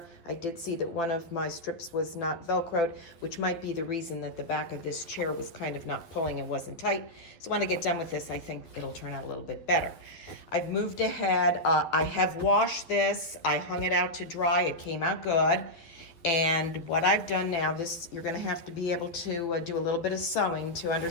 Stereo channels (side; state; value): right; late; 12 ms